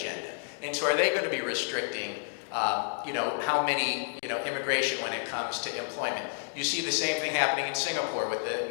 And so are they going to be restricting how many, immigration when it comes to employment? You see the same thing happening in Singapore with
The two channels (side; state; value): right; silent; 58 dB below the other